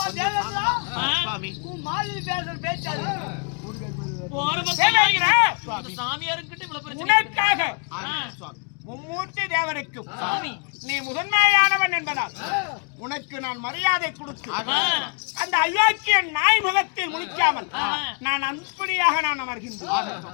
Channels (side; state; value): right; quieter; 36.3 dB